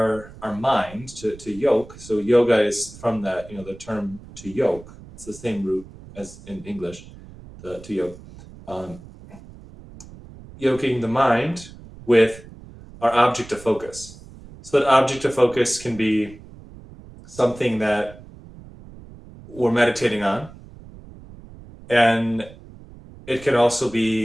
mind to yoke. So yoga is from that, the term to yoke. It's the same root as in English, to yoke. Um, Yoking the mind with our object of focus. So that object of focus can be something that we're meditating on, and it can also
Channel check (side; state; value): right; noise; rumble, 19 dB below the sound